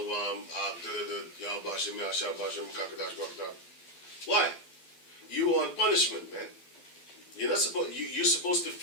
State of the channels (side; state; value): right; late; 12 ms